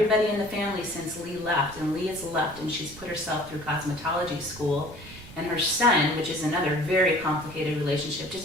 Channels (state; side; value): noise; right; rumble, 17 dB below the sound